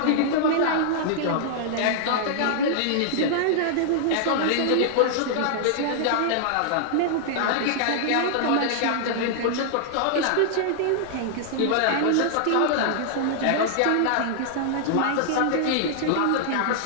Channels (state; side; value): different; both; correlation -0.01